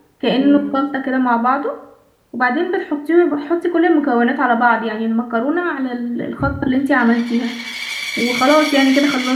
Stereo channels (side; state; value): both; identical; correlation 1.00